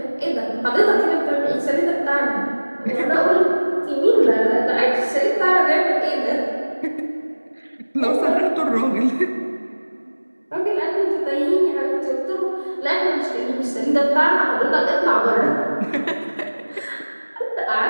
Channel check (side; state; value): both; inverted; correlation -1.00